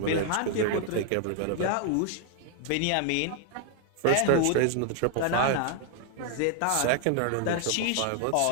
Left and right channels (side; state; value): both; different; correlation 0.00